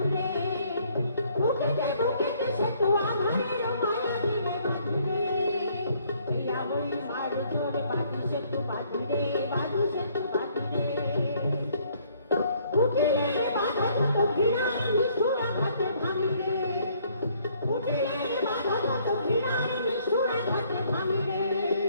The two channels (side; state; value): both; inverted; correlation -0.64